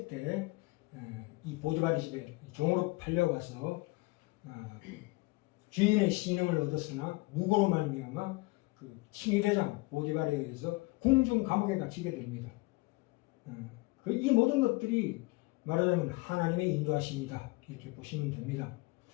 때 이 보디발의 집에 종으로 팔려가서 주인의 신임을 얻었으나 무고로 말미암아 그 칭의대장 보디발에 의해서 궁중 감옥에 갇히게 됩니다. 이 모든 것들이 말하자면 하나님의 인도하심이다 이렇게 보시면 됩니다.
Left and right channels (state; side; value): quieter; right; 24.1 dB